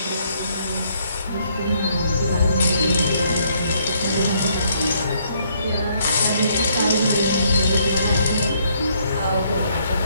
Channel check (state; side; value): inverted; both; correlation -0.69